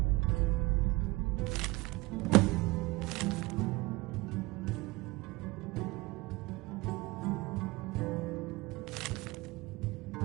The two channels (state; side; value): quieter; left; 22.0 dB